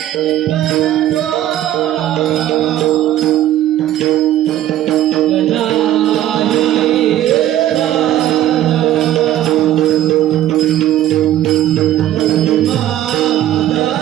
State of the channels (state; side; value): quieter; left; 12.9 dB